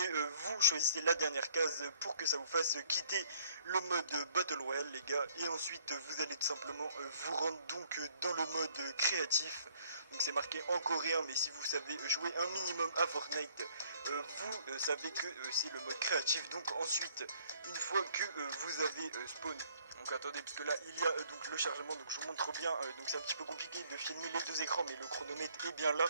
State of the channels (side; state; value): both; inverted; correlation -0.61